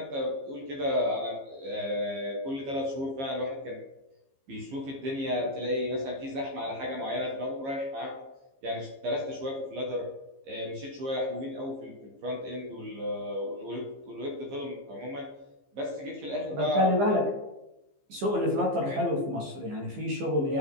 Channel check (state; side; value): late; left; 15 ms